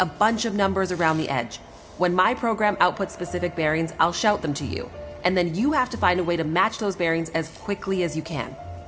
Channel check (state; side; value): identical; both; correlation 1.00